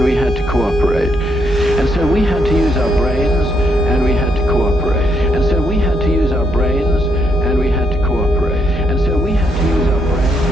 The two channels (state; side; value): normal; both; correlation 0.76